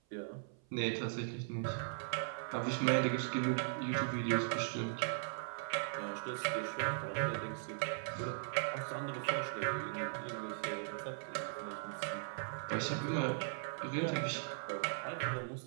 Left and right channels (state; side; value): silent; left; 52 dB below the other